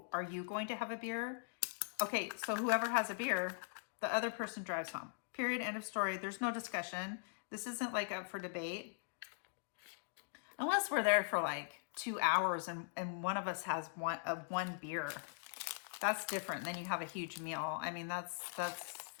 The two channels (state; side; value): silent; right; digital silence